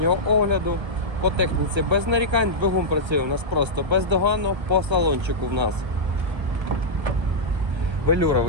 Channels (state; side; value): late; left; 1.3 ms